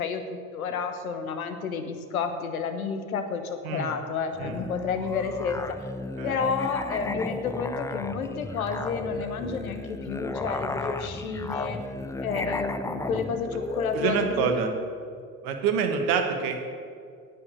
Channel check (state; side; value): normal; both; correlation 0.24